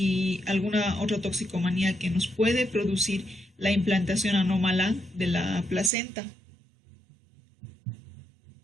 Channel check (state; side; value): drops out; left; at 5.9 s